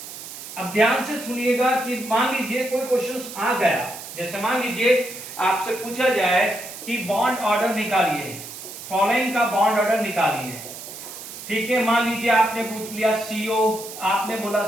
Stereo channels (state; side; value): noise; right; hiss, 12 dB below the sound